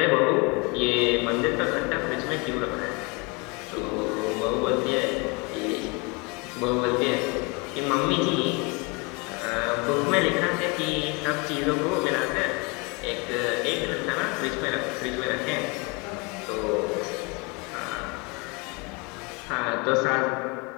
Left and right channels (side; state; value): right; quieter; 29.5 dB